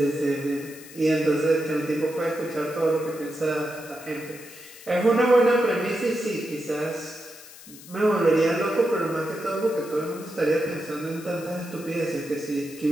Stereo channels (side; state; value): left; noise; hiss, 18 dB below the sound